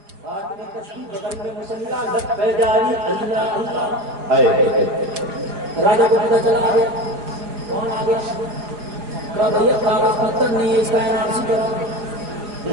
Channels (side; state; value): left; late; 5.0 ms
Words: हाथ में तस्बीह, बगल में मुसल्ला, लब पे जारी अल्लाह अल्लाह है। राजा को पता चला, आ गया। कौन आ गया? कहा भैया कागज पत्थर नहीं है, इसका एनआरसी कराओ।